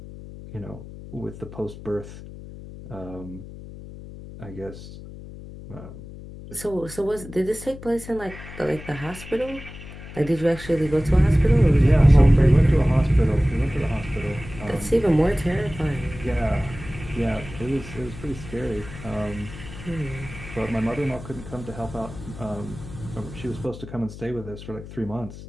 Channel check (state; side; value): noise; left; hum, 14 dB below the sound